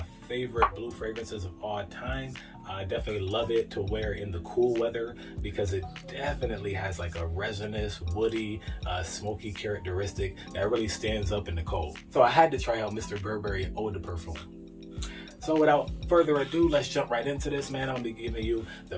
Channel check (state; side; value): identical; both; correlation 1.00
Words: favorite blue fragrances of all time. I definitely love it to wear in the cool weather because it definitely has like a resinous, woody, smoky characteristic that really stands up in the cold. So I had to try out Mr. Burberry Eau de Parfum. So without further ado, let's jump right into this, man. I'll be giving you the